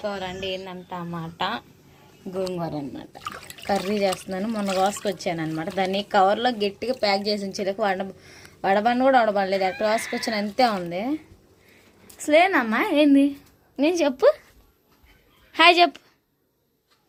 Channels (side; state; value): both; identical; correlation 1.00